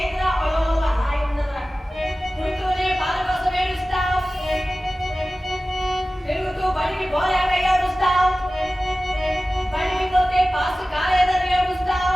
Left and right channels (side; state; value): both; normal; correlation 0.96